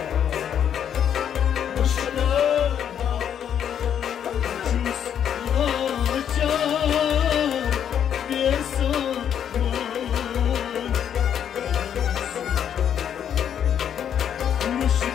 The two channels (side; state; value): right; quieter; 9.0 dB